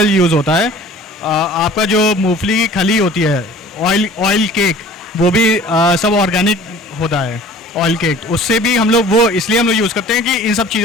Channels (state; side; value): normal; both; correlation 0.46